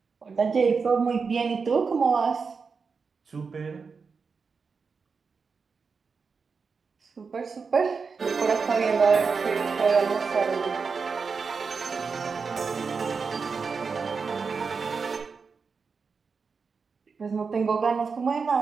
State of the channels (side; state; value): left; quieter; 5.2 dB